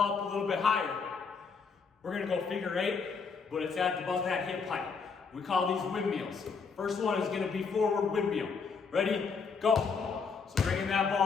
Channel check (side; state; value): right; quieter; 5.4 dB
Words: up a little bit higher, we're going to go figure 8, but it's at about that hip height. We call these windmills. First one is going to be forward windmill. Ready? Go. So bringing that